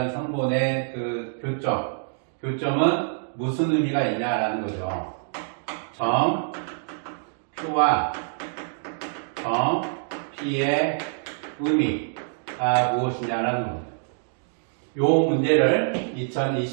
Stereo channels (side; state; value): left; silent; digital silence